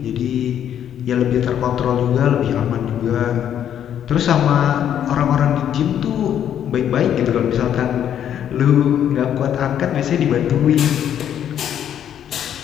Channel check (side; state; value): right; quieter; 9.8 dB